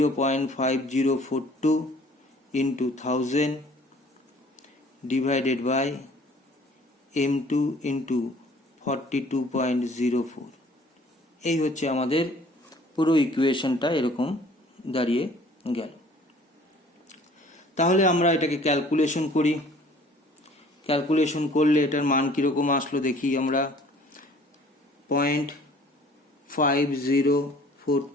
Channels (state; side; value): normal; both; correlation 0.53